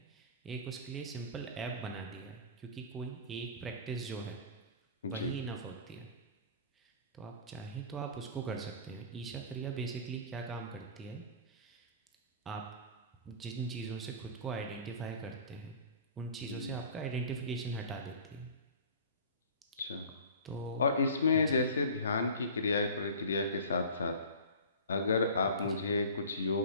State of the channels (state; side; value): inverted; both; correlation -0.40